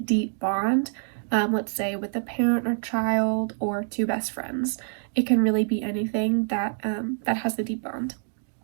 bond, let's say with a parent or child or two best friends. It can really be anything that has a deep bond.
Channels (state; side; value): silent; left; 61 dB below the other